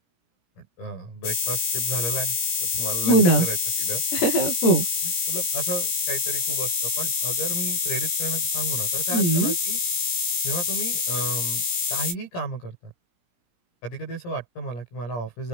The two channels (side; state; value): right; late; 17 ms